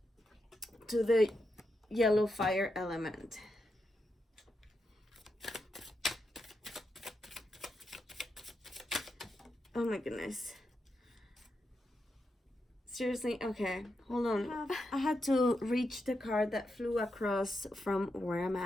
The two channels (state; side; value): normal; both; correlation 0.85